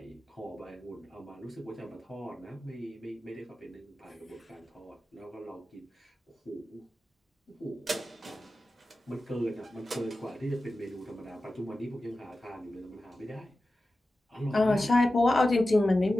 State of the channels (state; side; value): normal; both; correlation 0.94